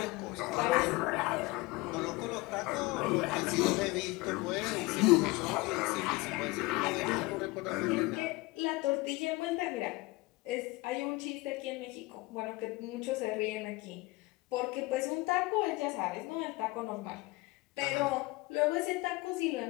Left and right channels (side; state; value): right; quieter; 22.5 dB